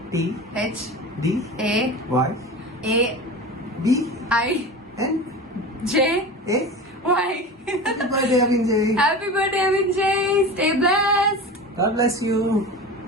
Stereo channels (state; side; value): normal; both; correlation 0.31